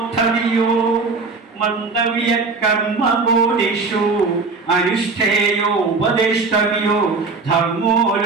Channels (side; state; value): left; quieter; 4.2 dB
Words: മന്ദവ്യ കർമ്മബോധിഷു അനുഷ്ഠേയോ ഉപദേഷ്ടവ്യോ ധർമ്മോ